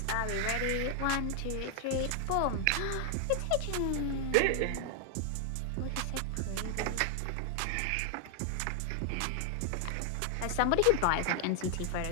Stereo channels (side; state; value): both; different; correlation 0.00